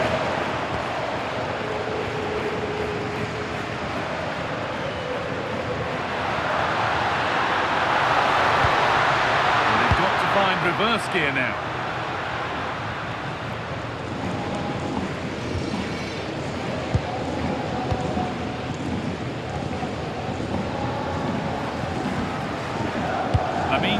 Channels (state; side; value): identical; both; correlation 1.00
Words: And they've got to find reverse gear now.